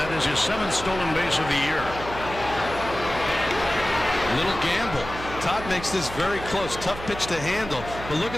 is his 7th stolen base of the year. Little gamble. Todd makes this very close. Tough pitch to handle. But look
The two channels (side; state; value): right; noise; hum, 11 dB below the sound